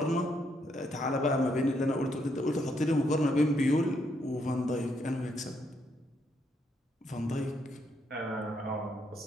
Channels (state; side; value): normal; both; correlation 0.75